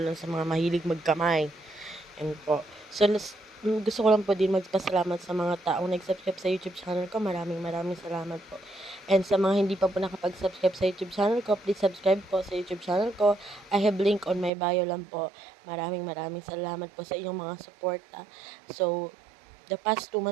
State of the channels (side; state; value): left; drops out; at 14.5 s